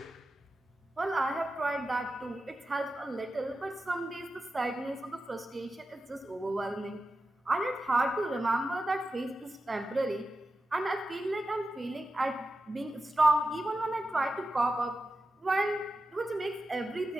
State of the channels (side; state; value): both; normal; correlation 0.91